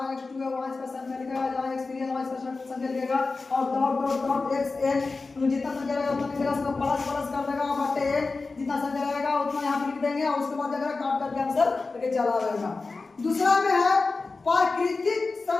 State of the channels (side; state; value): right; quieter; 3.9 dB